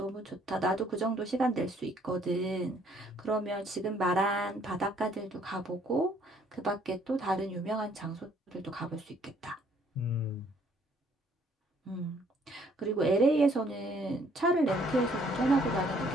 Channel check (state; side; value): normal; both; correlation 0.63